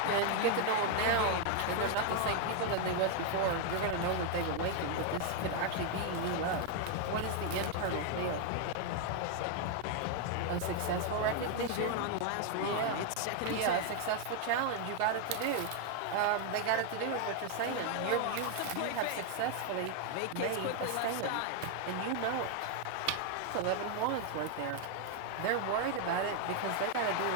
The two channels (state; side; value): different; both; correlation 0.00